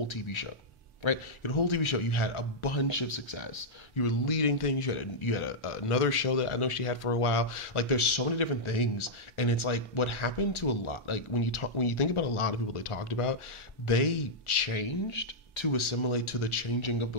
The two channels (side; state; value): both; normal; correlation -0.07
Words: TV show. Right, you had a whole TV show. You had a bunch of success. You were leading things. You had another show that I know she had for a while. Like, there's so many different things, and it's like what happened to a lot. Like when you think about a lot of people they talked about, they changed to assimilate to the changing of